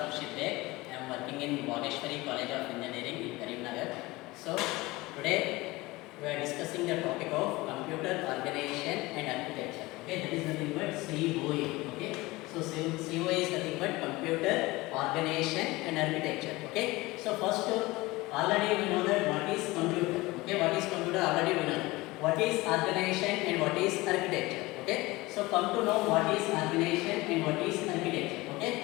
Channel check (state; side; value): quieter; right; 21.0 dB